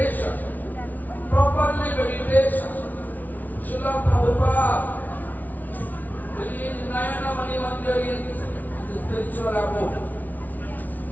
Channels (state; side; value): late; right; 0.078 ms